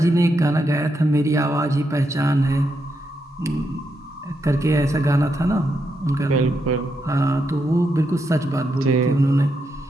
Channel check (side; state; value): both; normal; correlation 0.82